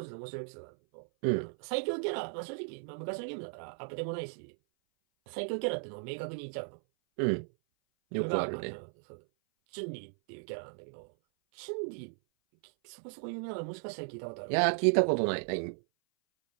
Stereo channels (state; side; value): silent; left; 54 dB below the other